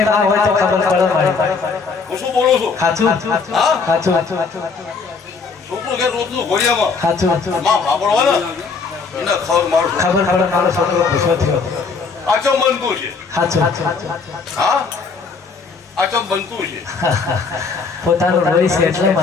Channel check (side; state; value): right; quieter; 4.8 dB